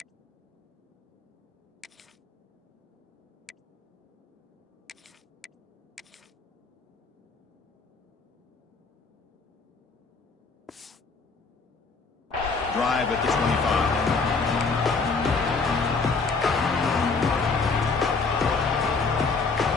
Drive at the 25.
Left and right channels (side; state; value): right; quieter; 4.5 dB